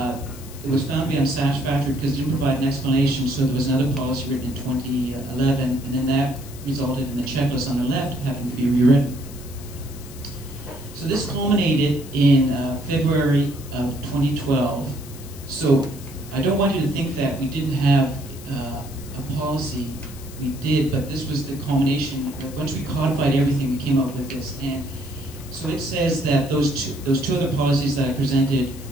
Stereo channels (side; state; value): left; noise; hiss, 18 dB below the sound